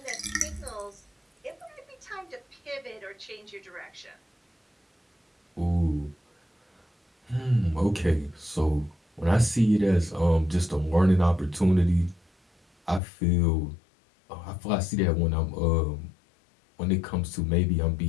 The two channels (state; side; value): drops out; right; at 13.0 s